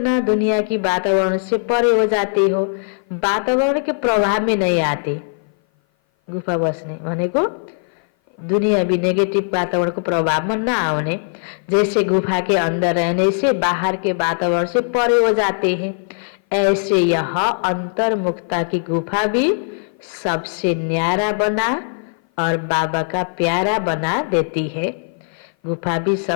दुनिया की वातावरण से परे हो जाते हो। वातावरण के प्रभाव में नहीं आते। गुफा बस्ने भनेको दुनिया भी नेगेटिव वातावरण को प्रभाव में न आने। जैसे गुफा के अंदर रहने से बाहर के वातावरण से परे हो जाते हैं, ऐसे यह अंतर्मुक्ता की गुफा भी सबसे न्यारा बना और बाबा का प्यारा बना देती है। गुफा भी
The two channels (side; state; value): right; silent; 57 dB below the other